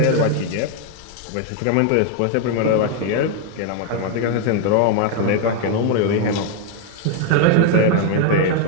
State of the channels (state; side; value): different; both; correlation 0.01